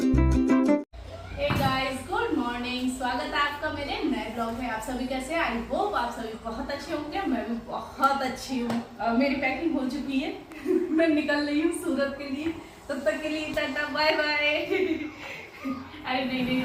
गुड मॉर्निंग, स्वागत है आपका मेरे नए ब्लॉग में। आप सभी कैसे हैं? आई होप आप सभी बहुत अच्छे होंगे। मैं भी बहुत अच्छी हूँ। मेरी पैकिंग हो चुकी है। मैं निकल रही हूँ सूरत के लिए। तब तक के लिए टाटा बाय बाय। अरे नहीं,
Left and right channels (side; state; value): both; identical; correlation 1.00